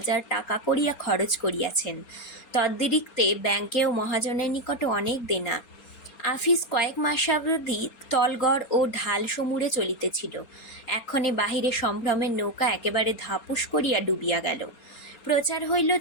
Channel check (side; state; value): right; late; 4.3 ms